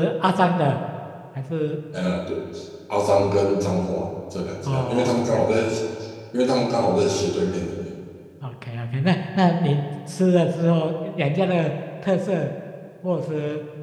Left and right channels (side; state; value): both; identical; correlation 1.00